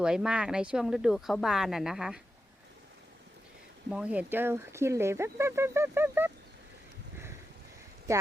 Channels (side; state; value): both; normal; correlation 0.89